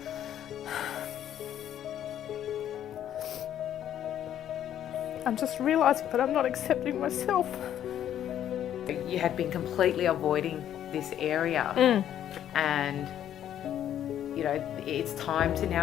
I'm just realising that I'm not accepting myself. You had been completely avoiding this area and you know, it's time to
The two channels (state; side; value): quieter; right; 10.7 dB